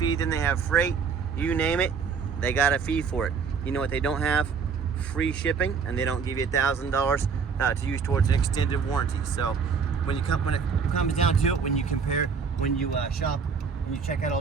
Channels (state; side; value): quieter; left; 5.9 dB